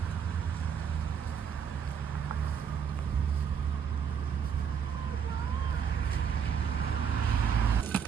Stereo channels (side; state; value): left; quieter; 7.4 dB